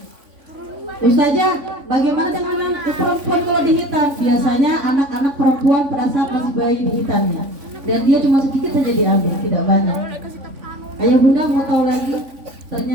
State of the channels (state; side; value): late; left; 3.5 ms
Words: Ustazah, bagaimana dengan perempuan kalau dihitan? Biasanya anak-anak perempuan pada saat masih bayi dihitannya, dan dia cuma sedikit saja diambil, tidak banyak. Ayah bunda mau tahu lagi?